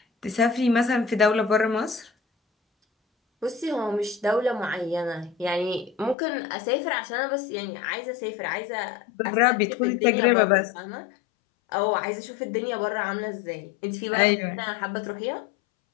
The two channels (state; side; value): drops out; right; at 6.2 s